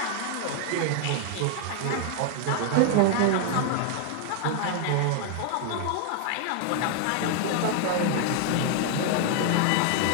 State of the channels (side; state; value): both; different; correlation 0.00